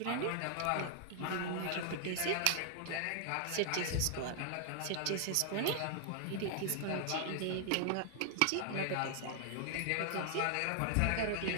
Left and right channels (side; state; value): both; different; correlation 0.00